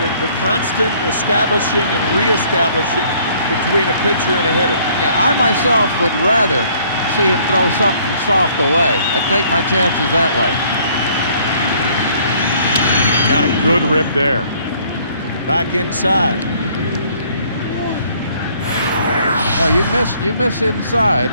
constant establishing and reestablishing between a pitcher and a hitter. Yeah, I myself would rather see him throw something soft away. I'd take my chances that way. Got a good rip there. Back inside. No, you miss inside.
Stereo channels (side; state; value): both; inverted; correlation -0.60